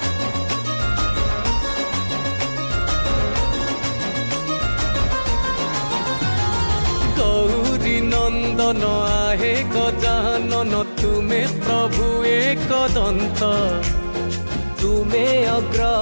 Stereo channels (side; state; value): both; inverted; correlation -1.00